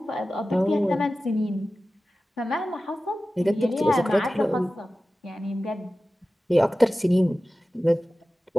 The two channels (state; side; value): normal; both; correlation 0.95